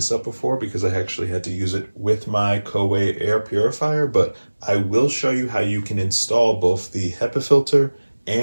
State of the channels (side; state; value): both; inverted; correlation -1.00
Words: up before because I actually had to use it with my Coway air purifier, but I will show you how you can install both the HEPA filter